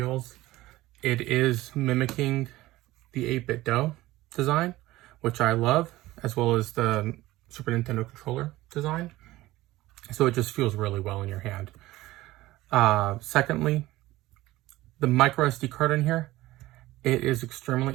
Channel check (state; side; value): quieter; left; 17.4 dB